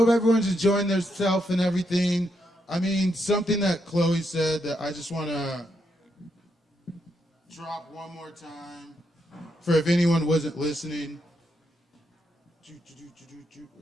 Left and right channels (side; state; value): both; normal; correlation 0.80